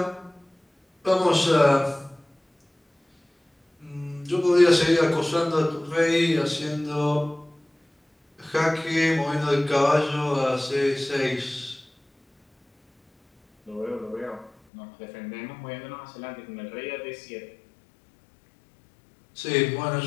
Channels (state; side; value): drops out; right; at 14.5 s